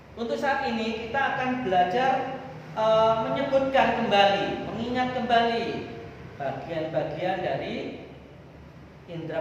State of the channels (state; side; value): identical; both; correlation 1.00